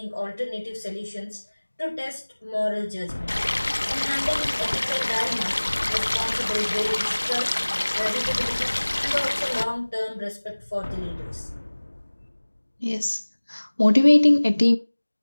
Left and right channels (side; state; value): both; inverted; correlation -1.00